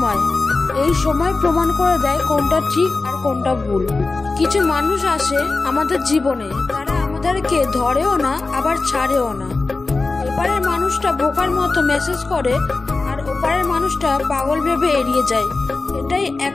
এই সময় প্রমাণ করে দেয় কোনটা ঠিক আর কোনটা ভুল। কিছু মানুষ আসে আমাদের জীবনে, তারা আমাদেরকে ধরেও না আবার ছাড়েও না। এপারের মানুষটা বোকার মতো মেসেজ করে আর ওপারের মানুষটা পাগল ভেবে এড়িয়ে যায়। এটাই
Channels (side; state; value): right; quieter; 3.7 dB